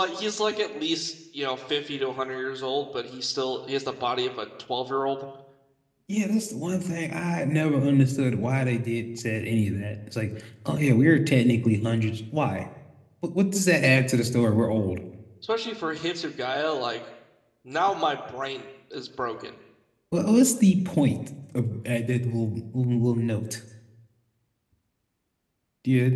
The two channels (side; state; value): both; identical; correlation 1.00